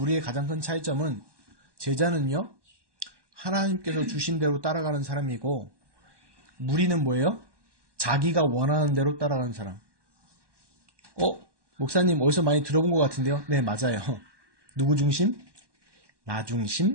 가장 큰 차이점은 제자는요. 하나님께서 주신 대로 따라가는 사람이고 무리는 뭐예요? 자기가 원하는 대로 따라가는 사람. 목사님 어디서 많이 들어본 것 같은데요? 네, 맞아요. 누구 중심? 나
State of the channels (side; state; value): left; late; 1.2 ms